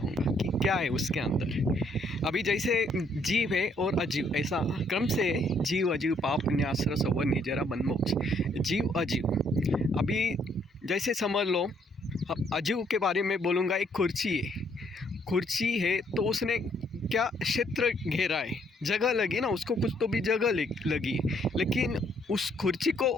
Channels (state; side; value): normal; both; correlation 0.68